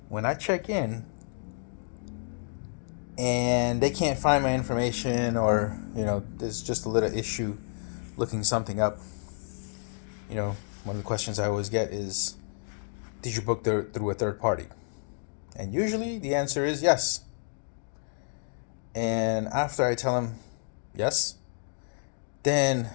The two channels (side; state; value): right; silent; digital silence